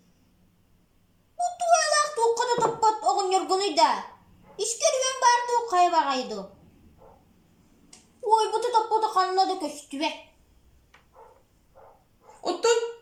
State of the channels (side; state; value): both; identical; correlation 1.00